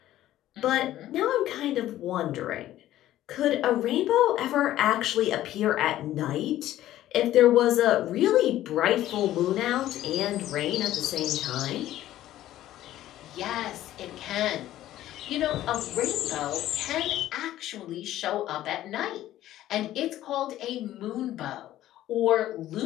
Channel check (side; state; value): right; quieter; 13.7 dB